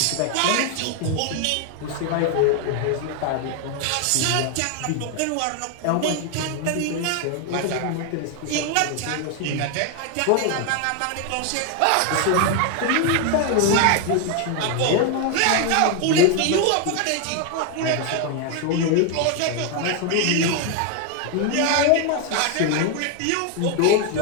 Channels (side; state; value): both; different; correlation 0.01